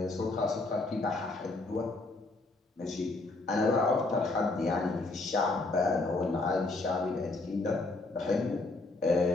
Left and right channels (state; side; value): quieter; right; 3.2 dB